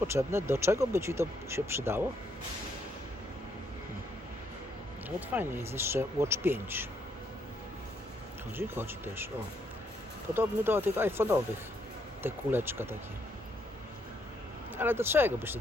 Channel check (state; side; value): normal; both; correlation 0.73